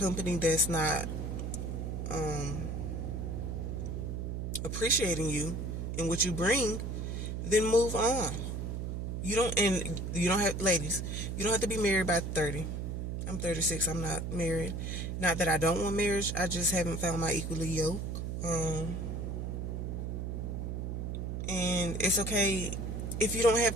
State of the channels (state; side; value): noise; right; hum, 3 dB below the sound